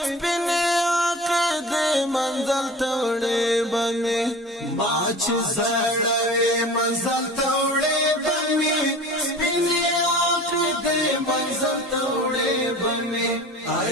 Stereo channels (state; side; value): normal; both; correlation 0.39